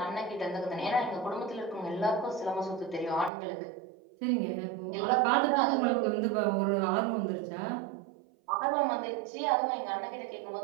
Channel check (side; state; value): left; drops out; at 3.3 s